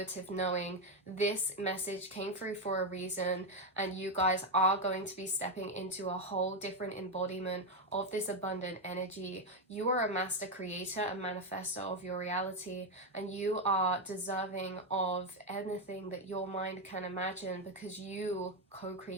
knowing. This message came through for a reason, and you guys are going to be stepping into a whole different embodiment of this abundant energy. You are a master creator and manifestor of your reality, and you are deserving of anything that your mind can imagine because you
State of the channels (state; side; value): normal; both; correlation 0.06